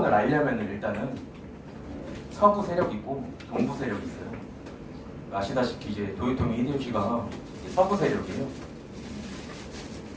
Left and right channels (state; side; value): identical; both; correlation 1.00